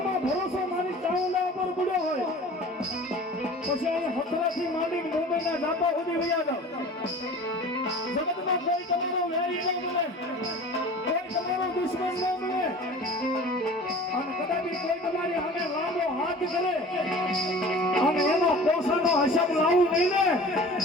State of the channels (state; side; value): normal; both; correlation 0.42